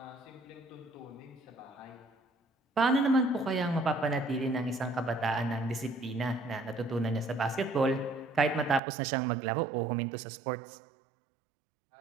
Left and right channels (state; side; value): drops out; left; at 8.8 s